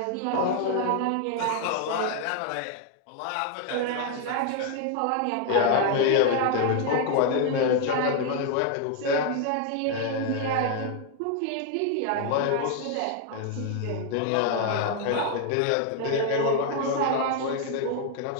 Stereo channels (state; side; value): different; both; correlation 0.00